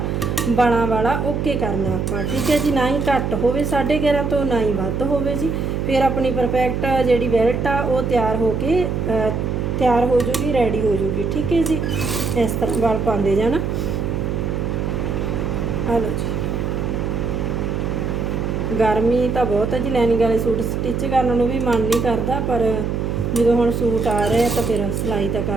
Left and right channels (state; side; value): noise; right; hum, 1 dB below the sound